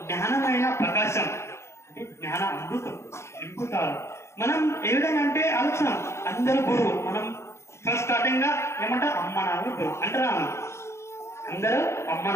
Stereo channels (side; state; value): right; late; 0.13 ms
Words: జ్ఞానమైన ప్రకాశం అంటే జ్ఞాన అమృతం నింపుతారు. మనం ఏ విధంగా అంటే ఆలోచన అందరూ గురువు. మనం ఫస్ట్ స్టార్టింగ్ గా ఏమంటారు? అమ్మ నాన్న గురువు అంటారా? అందరూ అమ్మ